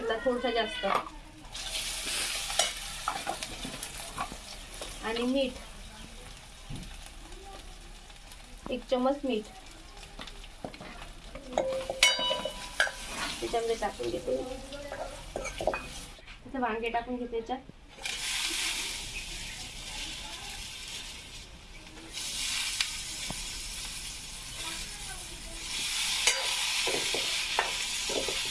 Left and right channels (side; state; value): both; identical; correlation 1.00